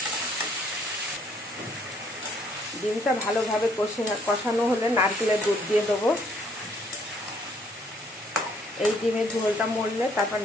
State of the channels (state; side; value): normal; both; correlation 0.65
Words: ডিমটা ভালোভাবে কষানো হলে নারকেলের দুধ দিয়ে দেবো। এই ডিমের ঝোলটা মরলে তারপর